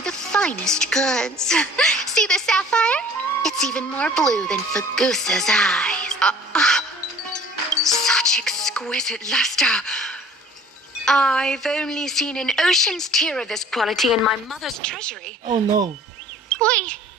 the finest goods. See the sapphire? It's even more blue than Fagusa's eyes. Such exquisite luster. I've only seen an ocean's tear of this quality in my mother's treasury. Oh no. Wait.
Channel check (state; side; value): normal; both; correlation 0.50